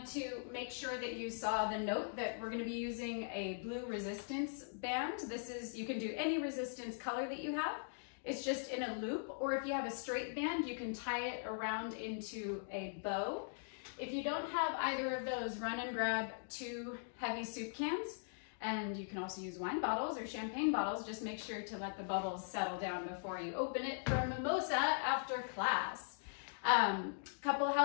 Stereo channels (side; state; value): right; silent; digital silence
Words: to make sure that you saw the note that we're going to be using a blue resistance band. This is, you can do any resistance color that you have. It's just in a loop, or if you have a straight band, you can tie it around into a bow. If you don't have either of those, run and grab 2 heavy soup cans. And you can also use wine bottles or champagne bottles. Just make sure to let the bubbles settle down before you open it for a mimosa after class. Couple of